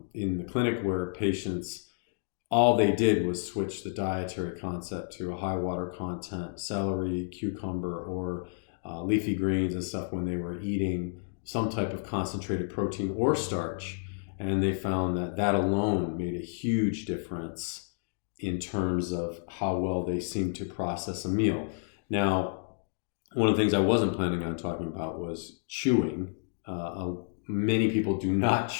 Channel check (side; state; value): right; silent; digital silence